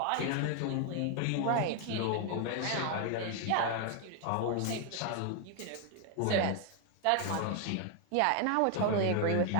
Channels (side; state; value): both; different; correlation 0.00